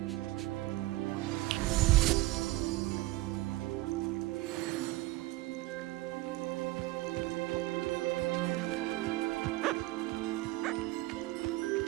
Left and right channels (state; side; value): quieter; left; 19.3 dB